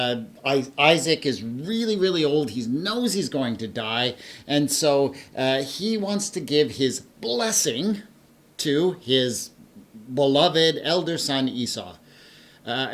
Isaac is really, really old. He knows he's going to die. And so he wants to give his blessing to his beloved elder son Esau.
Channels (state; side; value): identical; both; correlation 1.00